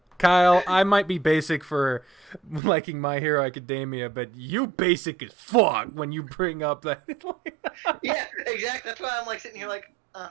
Kyle, I might be basic for liking My Hero Academia, but you basic as fuck when you bring up that. Yeah, exactly. That's why I'm like sitting here like,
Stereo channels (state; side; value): drops out; left; at 2.6 s